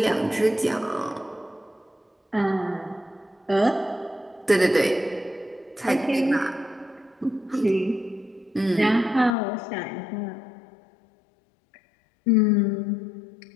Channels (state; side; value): drops out; right; at 9.3 s